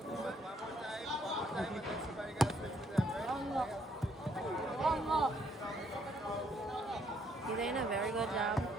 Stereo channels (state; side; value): normal; both; correlation 0.69